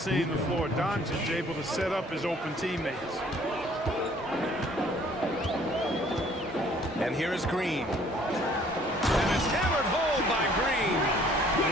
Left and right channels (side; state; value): both; normal; correlation 0.58